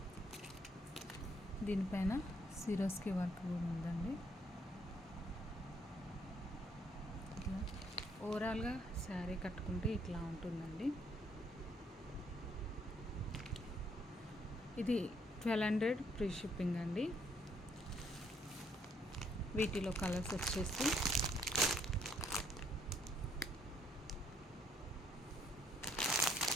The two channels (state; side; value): normal; both; correlation 0.69